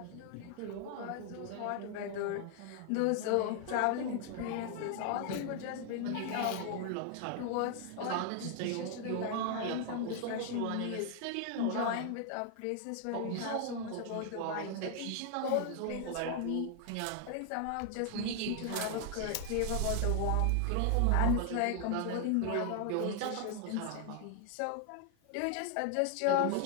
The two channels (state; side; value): different; both; correlation 0.00